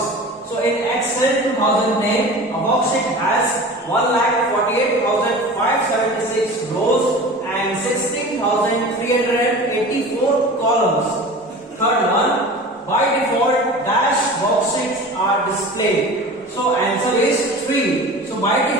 So in Excel 2010, a worksheet has 1,48,576 rows and 16,384 columns. Third one, by default, dash worksheets are displayed. So answer is 3. So by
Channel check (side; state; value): both; normal; correlation 0.37